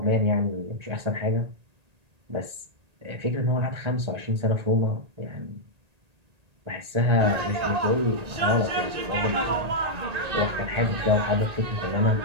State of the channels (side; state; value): left; late; 1.8 ms